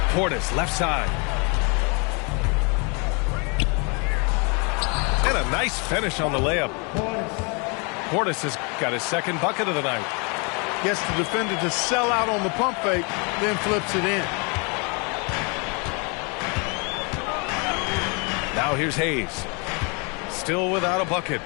Portis, left side. And a nice finish on the layup. Portis has got his 2nd bucket of the night. Gets the defender to sell out on the pump fake, then flips it in. Now here's Hayes. Still without a bucket.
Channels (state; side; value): quieter; right; 33.1 dB